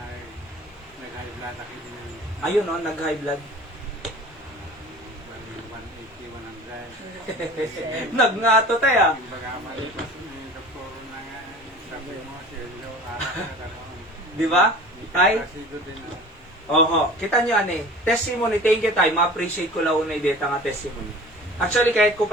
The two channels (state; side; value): normal; both; correlation 0.42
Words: Ayun no, nag-high blood. 180, 100. Nagngato tayo. Di ba? Ay? Oho. Kita nyo ane, testimony, thank you tayo. Ma-appreciate ko lang una ideta nga testimony. Actually, kahit ko